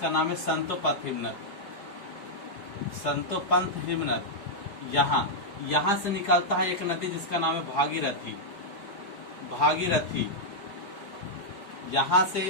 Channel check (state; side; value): late; right; 4.8 ms